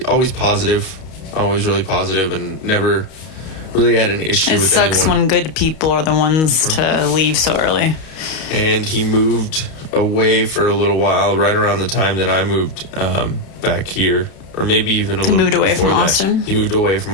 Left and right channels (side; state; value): right; late; 32 ms